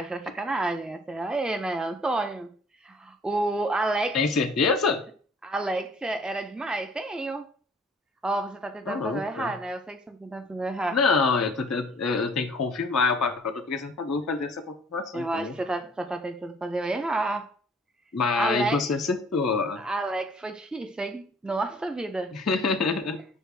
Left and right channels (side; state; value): both; normal; correlation 0.54